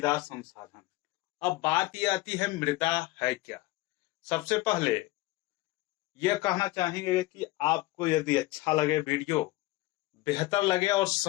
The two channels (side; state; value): right; quieter; 19.0 dB